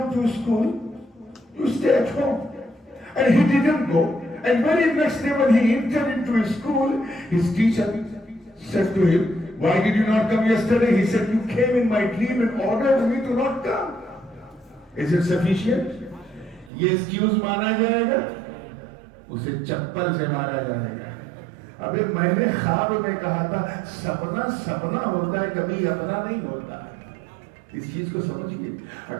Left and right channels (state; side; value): drops out; left; at 16.7 s